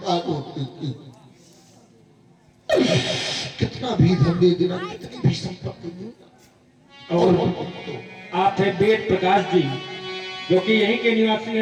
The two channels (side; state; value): both; identical; correlation 1.00